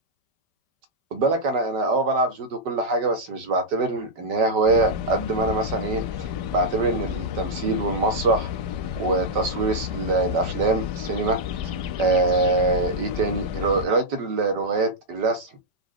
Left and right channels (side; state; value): left; late; 5.2 ms